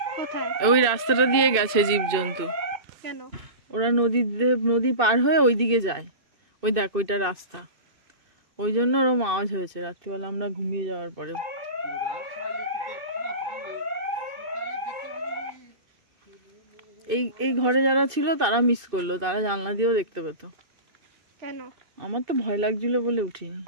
কোথায়? ওই রাস্তাটা দিয়ে গেছে জীবজন্তু। কেন? ওরা নদী পার হয়ে ওইদিকে যায়। ওই দেখ, ওইটা রাস্তা। ওই জন্য ওরম আওয়াজ হয়েছে রাত্রিবেলা আমরা ঘুমিয়ে যাওয়ার পরেও। এই ঘরে যারা ছিল তারা মিস করলো, তারা জানলা দিয়েও দেখতে পেত। কেন? আমার তো ভয় লাগছিল বলে উঠিনি।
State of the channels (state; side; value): late; left; 2.6 ms